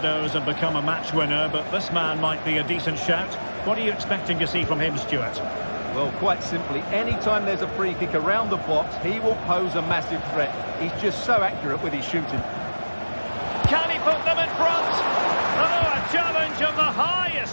and become a match winner, but this man might be a decent shout. What are you expecting to see from him, Stuart? Well, quite simply, anytime there's a free kick around the box, he will pose a massive threat. He's just so accurate with his shooting. Can he put them in front? Oh, a challenge of the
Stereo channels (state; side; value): inverted; both; correlation -1.00